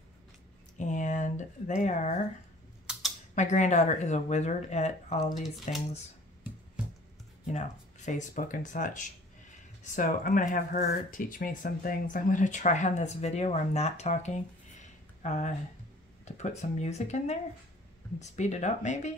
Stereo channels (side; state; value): both; normal; correlation 0.51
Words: And they are, my granddaughter is a wizard at all these things, you know, Facebook and such. So I'm going to have her teach me some things. I'm going to try on this video where I'm not talking to put some music in there and speed it up